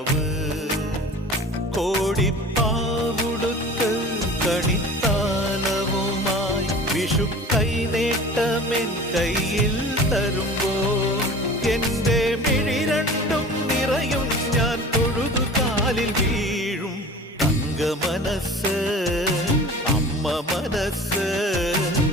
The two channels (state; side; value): normal; both; correlation 0.40